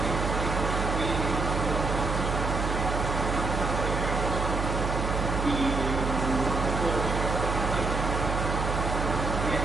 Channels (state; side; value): noise; right; hum, 2 dB below the sound